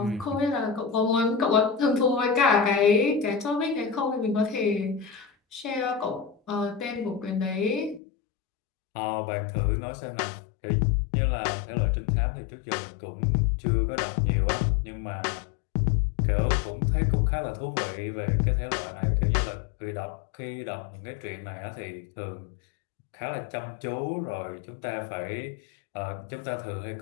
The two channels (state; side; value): drops out; right; at 8.0 s